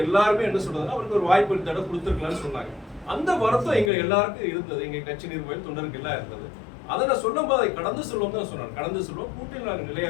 எல்லாருமே என்ன சொல்றதுன்னா அவருக்கு ஒரு வாய்ப்பு இந்த தடவை கொடுத்துருக்கலாம்னு சொன்னாங்க. அந்த வருத்தம் எங்க எல்லாருக்கும் இருந்தது, எங்க கட்சி நிர்வாகிகள் தொண்டருக்கு எல்லாம் இருந்தது. அதை நான் சொல்லும் போது அதை கடந்து சொல்லுவோம் தான் சொன்னாங்க. கடந்து சொல்லுவோம், கூட்டில் நாங்கள் நிலையா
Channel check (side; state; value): right; drops out; at 3.9 s